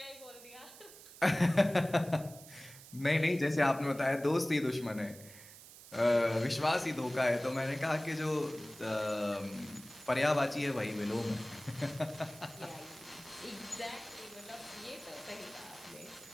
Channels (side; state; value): right; noise; hiss, 18 dB below the sound